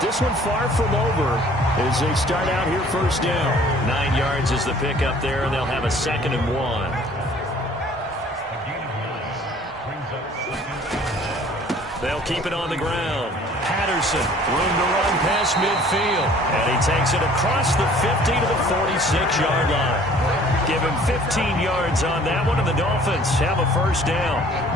one far from over as they start out here 1st down. 9 yards is the pickup there, and they'll have a 2nd and 1. They'll keep it on the ground. Patterson, room to run past midfield. And he takes it across the 50 to the 46-yard line. Give him 15 yards on that one, and the Dolphins have a 1st down.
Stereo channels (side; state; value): both; normal; correlation 0.53